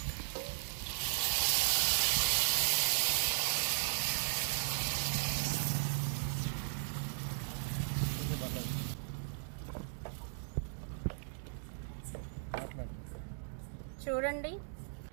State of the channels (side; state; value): left; silent; digital silence